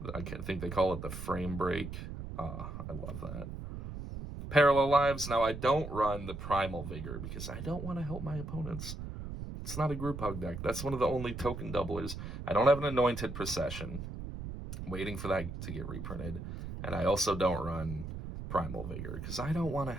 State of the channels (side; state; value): right; noise; rumble, 8 dB below the sound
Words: I think they call it the frame break. I love that. Parallel Lives. Now, I don't run the Primal Vigor because I don't want to help my opponents. It's not a group hug deck. That's one of the only token doublers. I don't have an Anointed Procession. Waiting for that to get reprinted. And I also don't run Primal Vigor because I don't want to